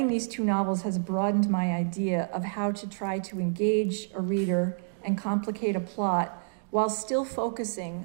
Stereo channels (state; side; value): silent; left; digital silence